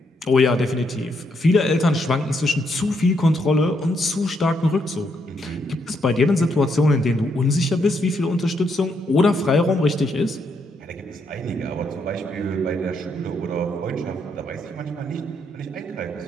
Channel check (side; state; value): both; normal; correlation 0.76